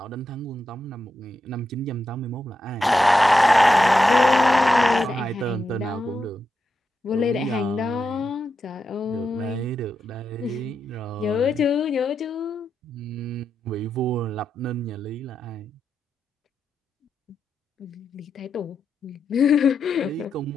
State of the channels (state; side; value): normal; both; correlation 0.86